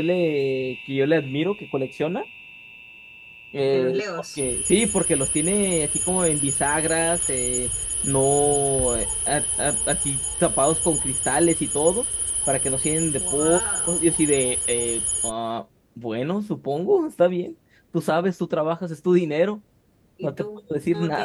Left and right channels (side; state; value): both; identical; correlation 1.00